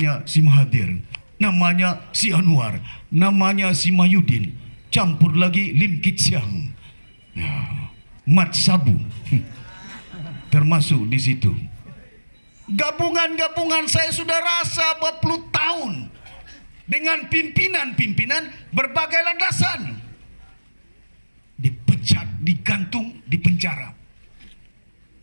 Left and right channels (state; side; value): inverted; both; correlation -1.00